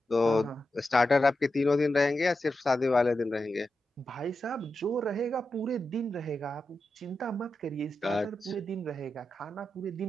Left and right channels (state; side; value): normal; both; correlation 0.90